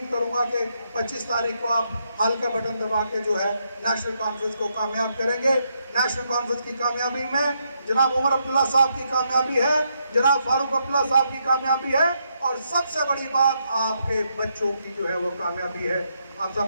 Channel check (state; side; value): inverted; both; correlation -0.79